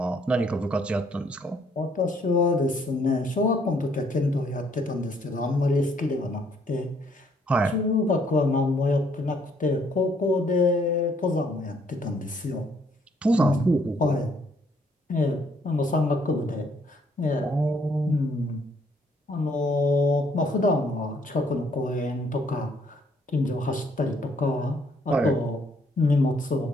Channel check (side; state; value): both; normal; correlation 0.67